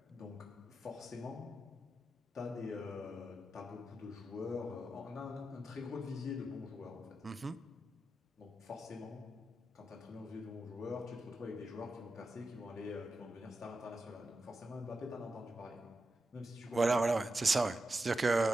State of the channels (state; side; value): normal; both; correlation 0.89